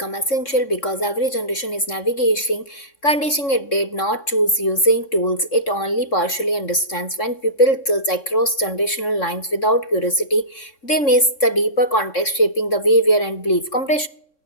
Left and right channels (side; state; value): right; late; 3.6 ms